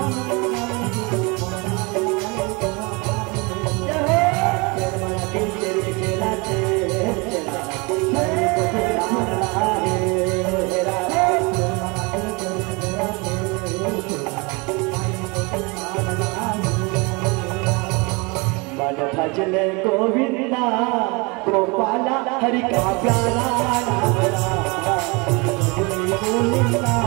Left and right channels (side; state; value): left; quieter; 28.3 dB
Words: भजले गोविंदा गोपाला हरि का प्यारा नाम